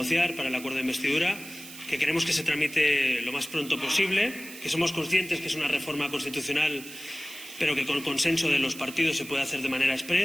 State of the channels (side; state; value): right; noise; hiss, 14 dB below the sound